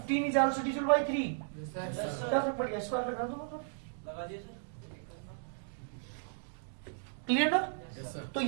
इज आल्सो डिविजिबल बाय 3, क्या फर्क पड़ गया, स्क्वायर लगा दो ना, लगा दिए सर। क्लियर ना। तो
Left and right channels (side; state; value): left; silent; digital silence